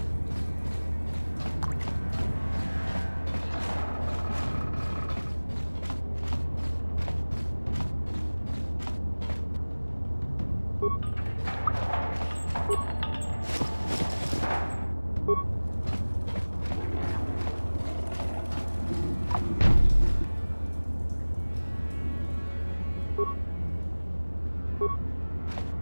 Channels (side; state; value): both; inverted; correlation -1.00